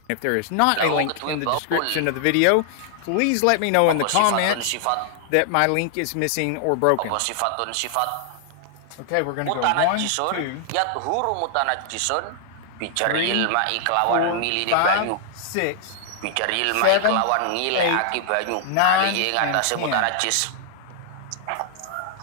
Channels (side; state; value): both; different; correlation 0.00